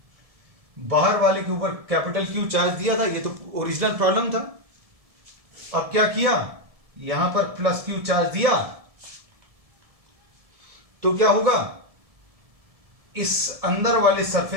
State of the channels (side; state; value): left; late; 1.7 ms